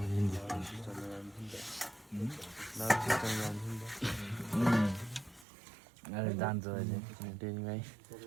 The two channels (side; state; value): left; drops out; at 5.5 s